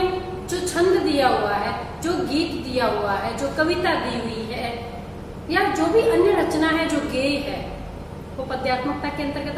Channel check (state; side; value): identical; both; correlation 1.00